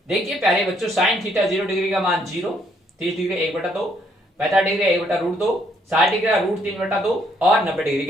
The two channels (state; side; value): normal; both; correlation 0.69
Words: देखिए प्यारे बच्चों, साइन थीटा 0 डिग्री का मान 0, 30 डिग्री 1/2, 45 डिग्री 1/√2, 60 डिग्री का √3/2 और 90 डिग्री